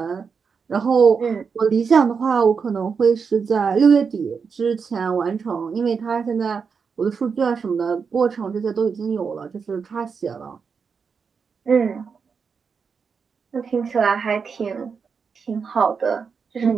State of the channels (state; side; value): quieter; left; 5.8 dB